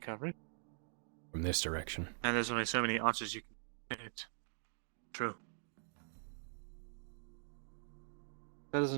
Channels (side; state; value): left; silent; digital silence